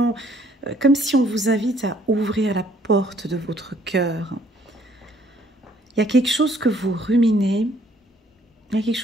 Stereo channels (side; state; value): both; normal; correlation 0.63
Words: comme si on vous invite à ouvrir la porte de votre cœur. Il y a quelque chose que vous ruminez, il y a quelque